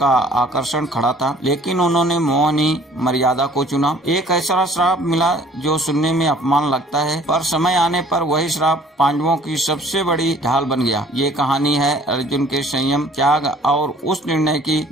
आकर्षण खड़ा था, लेकिन उन्होंने मोहनी मर्यादा को चुना। एक ऐसा श्राप मिला जो सुनने में अपमान लगता है, पर समय आने पर वही श्राप पांडवों की सबसे बड़ी ढाल बन गया। ये कहानी है अर्जुन के संयम, त्याग और उस निर्णय की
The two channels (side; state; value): both; normal; correlation 0.54